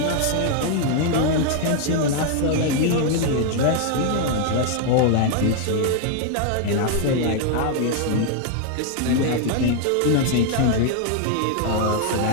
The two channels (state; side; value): different; both; correlation 0.00